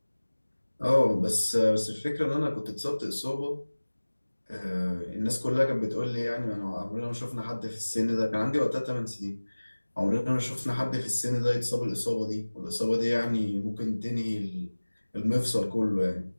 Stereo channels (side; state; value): both; inverted; correlation -1.00